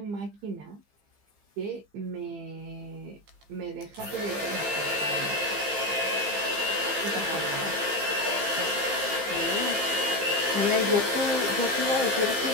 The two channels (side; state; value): left; late; 15 ms